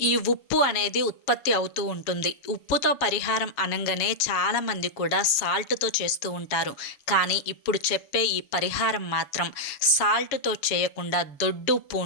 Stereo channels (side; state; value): right; late; 7.2 ms